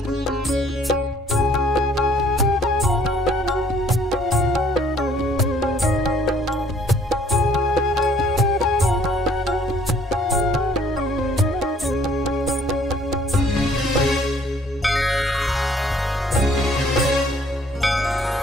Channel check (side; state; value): both; normal; correlation 0.60